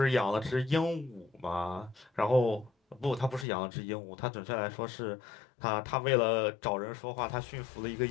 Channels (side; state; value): right; drops out; at 3.5 s